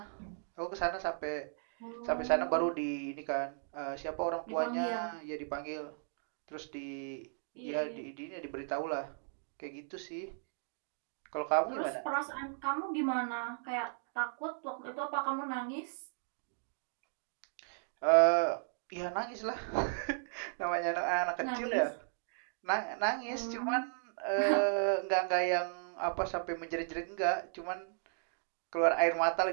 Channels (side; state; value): left; silent; digital silence